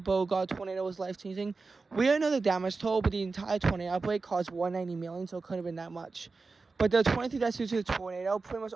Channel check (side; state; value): left; quieter; 4.1 dB